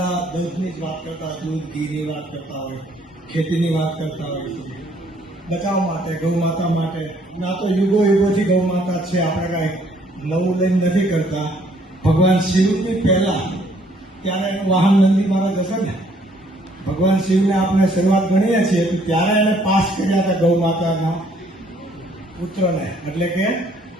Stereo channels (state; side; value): normal; both; correlation 0.64